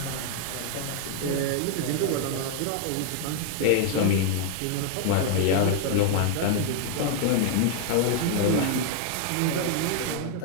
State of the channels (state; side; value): different; both; correlation 0.00